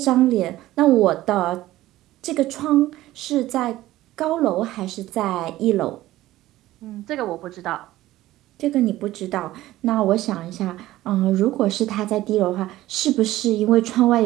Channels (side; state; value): left; quieter; 15.8 dB